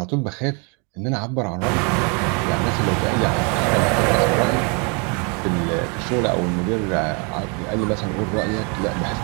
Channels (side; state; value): left; quieter; 34.2 dB